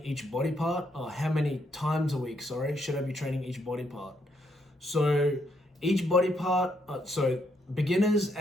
each body part, or how many times a week, should I be training each body part. So each body part, so beginners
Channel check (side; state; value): both; normal; correlation 0.75